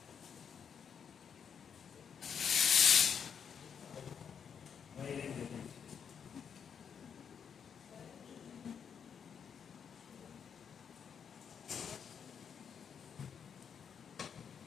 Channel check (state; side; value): quieter; right; 7.3 dB